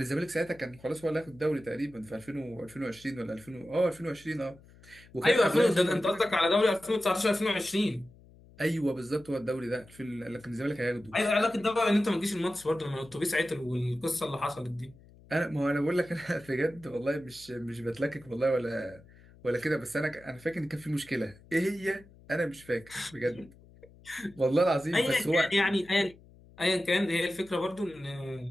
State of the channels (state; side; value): noise; left; hum, 24 dB below the sound